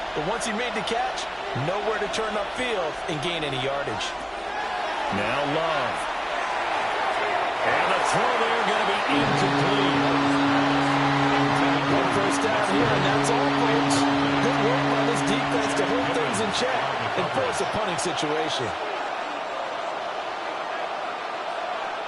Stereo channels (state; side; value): identical; both; correlation 1.00